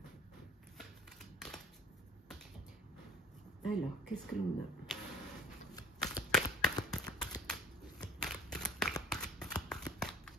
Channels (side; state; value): both; normal; correlation 0.48